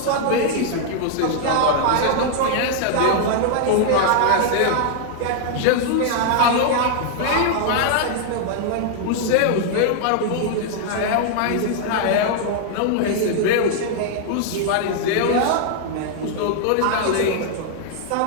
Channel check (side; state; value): both; different; correlation 0.00